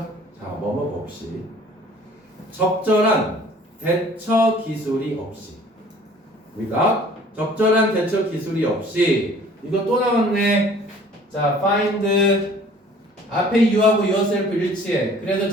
자, 뭐뭐가 없이 적절한 대처 기술이 없이 우리가 적절한 대처 기술이 없이 이거 또 나왔네. 자, find 앞에 you하고 yourself 일치해. 그래서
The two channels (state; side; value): normal; both; correlation 0.52